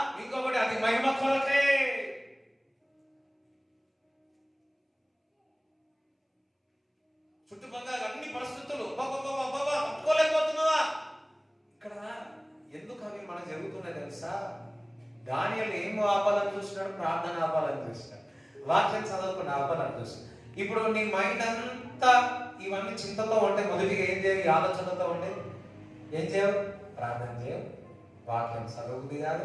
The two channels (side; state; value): both; identical; correlation 1.00